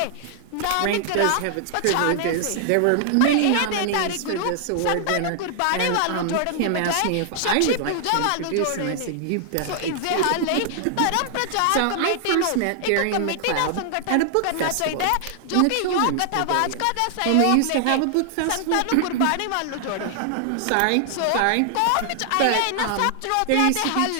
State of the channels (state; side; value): different; both; correlation 0.00